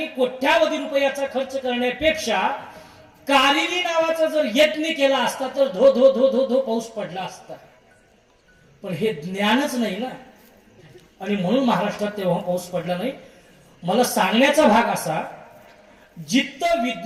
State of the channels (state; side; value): identical; both; correlation 1.00